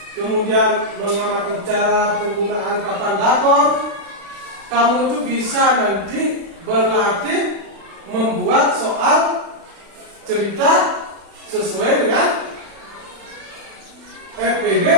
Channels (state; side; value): late; left; 36 ms